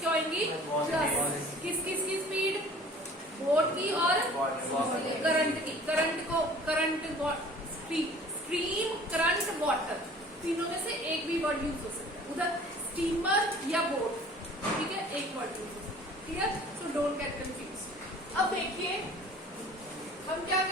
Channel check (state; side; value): normal; both; correlation 0.48